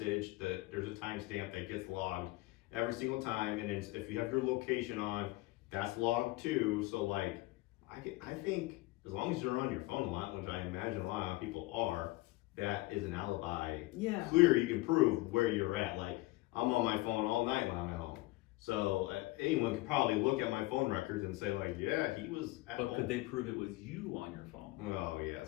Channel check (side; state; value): right; quieter; 20.4 dB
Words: there's a timestamp that gets logged every single time, and if you have your location on, that's logged too. So like, I think. As long as you're on your phone a lot, which I imagine a lot of people are, that is an alibi. Yeah. Clear, you can prove where you're at. Like, I'm on my phone all night when I'm at home. So anyone could probably look at my phone records and say like, yeah, he was at home. But could they prove it was you on your phone? Oh, yeah.